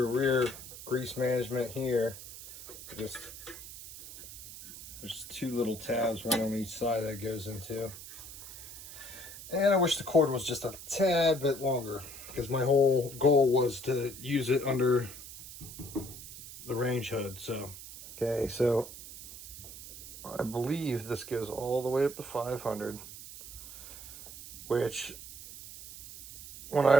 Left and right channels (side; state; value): right; noise; hiss, 13 dB below the sound